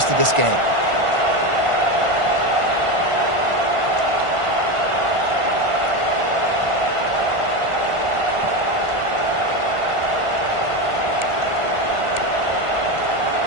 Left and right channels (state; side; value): late; left; 1.5 ms